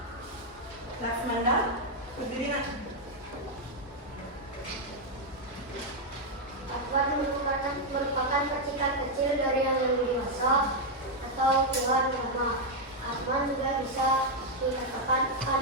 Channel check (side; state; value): both; normal; correlation 0.00